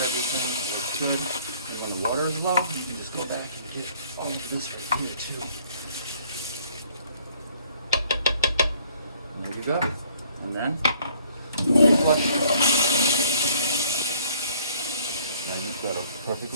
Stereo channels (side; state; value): both; inverted; correlation -0.59